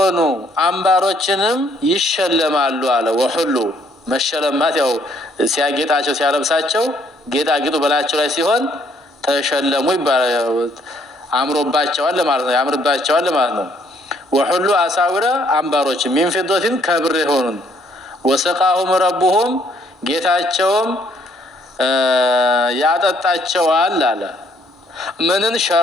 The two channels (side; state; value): both; normal; correlation 0.66